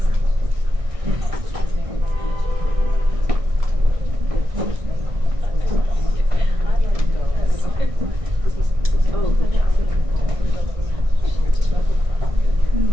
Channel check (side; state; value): left; late; 1.6 ms